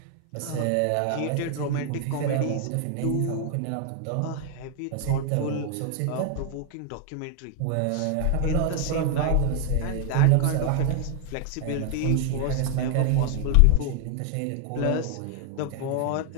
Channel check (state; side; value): different; both; correlation 0.00